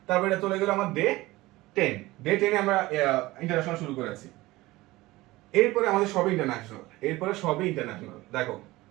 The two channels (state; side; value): quieter; left; 19.2 dB